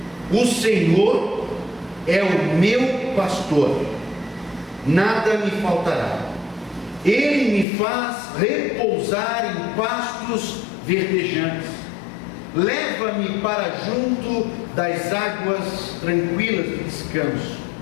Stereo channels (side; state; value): right; drops out; at 7.7 s